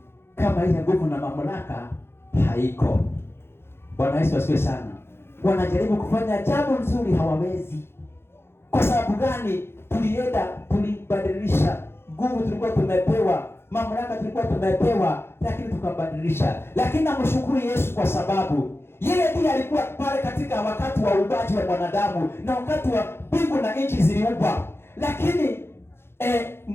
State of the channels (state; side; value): late; right; 0.12 ms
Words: kama ile nguvu na mamlaka haiko. Bwana Yesu asifiwe sana. Wanajaribu kufanya jambo nzuri hawawezi. Kwa sababu gani? Tulibadilisha nguvu tulikuwa tumepewa, mamlaka tulikuwa tumepewa, lakini tukabadilisha. Lakini namshukuru Yesu kwa sababu yeye ndiye alikuwa pale katika wakati wa uumbaji wa mwanadamu na wakati wa mbingu na nchi ziliumbwa. Lakini